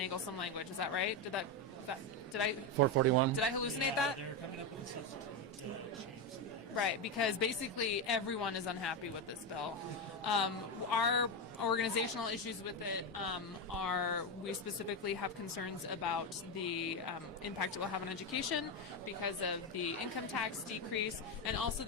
some language. Is that right? Did I 441. Did I hallucinate that? They're coming up with a substitute to change that. Right, because basically everyone is unhappy with this bill. Our organizational issues with it are, we specifically have concerns about the impact it will have on education because of the income tax decrease and also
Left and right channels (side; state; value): both; normal; correlation 0.10